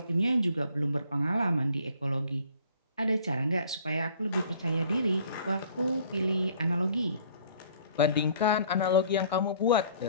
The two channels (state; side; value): inverted; both; correlation -0.56